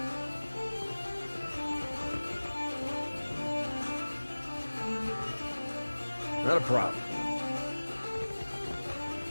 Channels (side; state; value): both; inverted; correlation -1.00